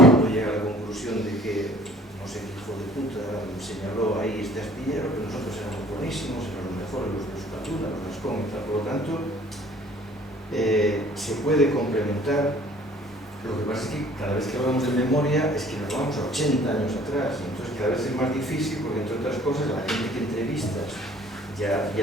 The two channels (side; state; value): both; normal; correlation 0.53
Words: llega a la conclusión de que no sé qué hijo de puta señaló ahí este astillero, que nosotros éramos buenísimos, éramos los mejores, los de Euskalduna, los Gascón y tal. Por lo tanto, se puede complementar. Lo que pasa es que cada vez que hablamos de memoria es que nos vamos a 80 años atrás, y entonces cada vez es más difícil porque, entre otras cosas, la gente que entrevistas ya